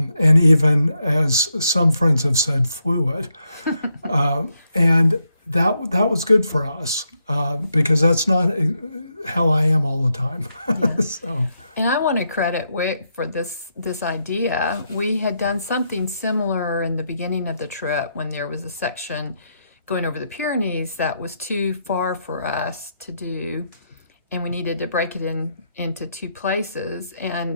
And even, as some friends have said, fluid. And that was good for us because that's not how I am all the time. So. And I want to credit Wick for this idea. We had done something similar in the beginning of the trip when there was a section going over the Pyrenees that was too far for us to do, and we needed to break it into two places,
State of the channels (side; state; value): both; inverted; correlation -0.80